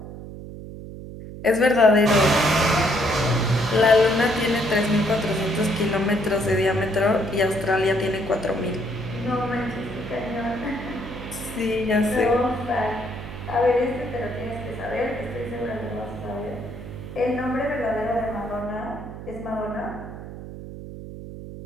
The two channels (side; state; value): right; noise; hum, 11 dB below the sound